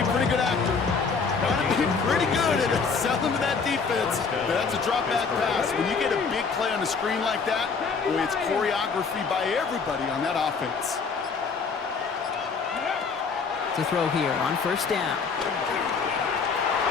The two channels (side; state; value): right; quieter; 5.2 dB